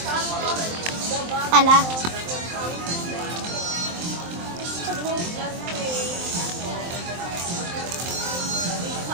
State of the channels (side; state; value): left; late; 23 ms